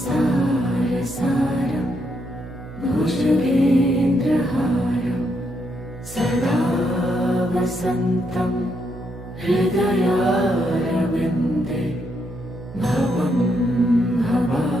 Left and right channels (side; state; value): right; noise; hum, 14 dB below the sound